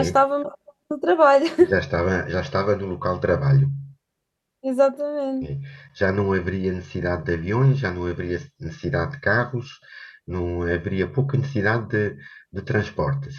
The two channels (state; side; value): identical; both; correlation 1.00